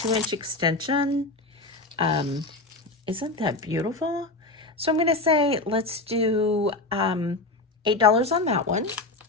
extension. Isn't that beautiful? So I'm going to say, let's do $8 on that one.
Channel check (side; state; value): right; quieter; 3.1 dB